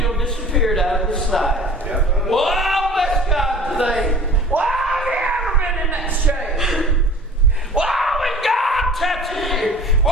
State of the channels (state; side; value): normal; both; correlation 0.44